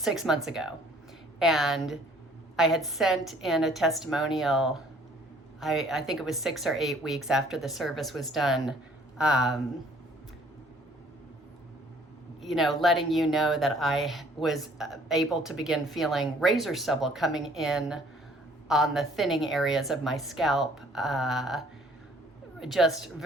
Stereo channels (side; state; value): both; normal; correlation 0.58